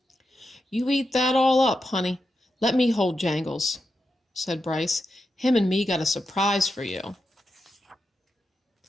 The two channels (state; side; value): normal; both; correlation 0.87